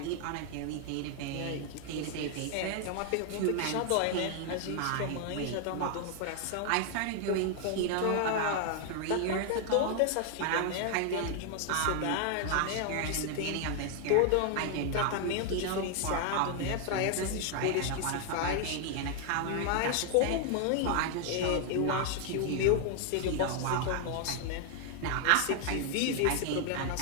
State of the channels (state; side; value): different; both; correlation 0.00